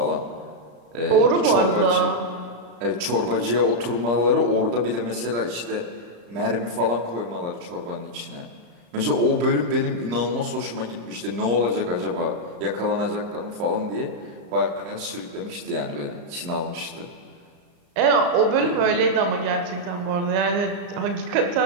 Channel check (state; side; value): late; left; 34 ms